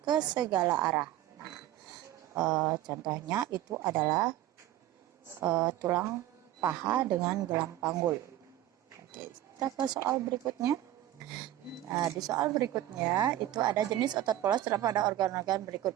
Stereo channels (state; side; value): quieter; left; 13.7 dB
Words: ke segala arah. Nah, contohnya itu adalah tulang paha dengan gelang panggul. Oke, kita ke soal berikutnya. Nah, di soal berikutnya itu ada jenis otot polos terdapat pada organ-organ berikut